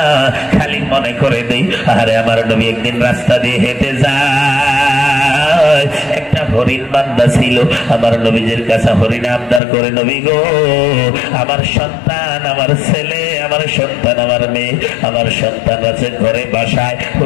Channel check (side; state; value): right; drops out; at 9.6 s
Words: খালি মনে করে দেই, আরে আমার নবী একদিন রাস্তা দিয়ে হেঁটে যায়, একটা হরিণ বান্দা ছিল, আমার নবীজির কাছে হরিণ আবদার করে, নবী গো আমার সন্তান, আমার ছেলে, আমার সন্তান, আমার মেয়ে, আমার সন্তান আছে ঘরে বাসায়,